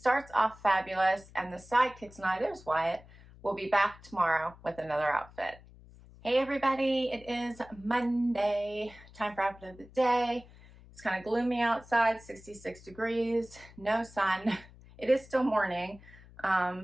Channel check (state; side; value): noise; left; hum, 22 dB below the sound